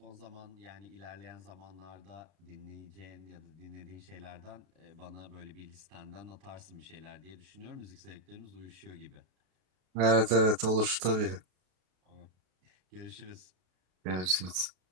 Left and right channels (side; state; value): left; late; 32 ms